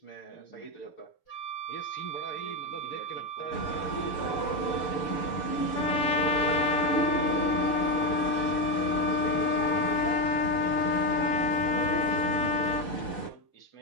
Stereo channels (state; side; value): late; right; 6.8 ms